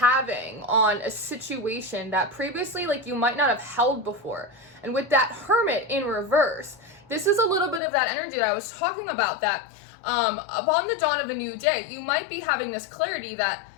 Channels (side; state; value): right; drops out; at 7.8 s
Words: on a situation that previously you might not have held before. And with that Hermit in reverse, this is a little bit of that energy that I was talking about, that upon the dawn of a new day, you might be having this clarity that,